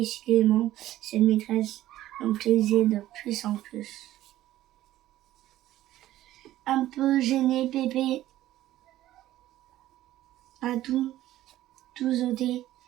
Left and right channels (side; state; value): left; quieter; 14.3 dB